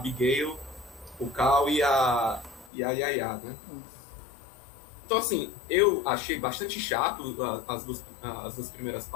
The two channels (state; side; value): drops out; right; at 2.7 s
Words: o Cal e a Yaya, né? Então, assim, eu achei bastante chato as duas primeiras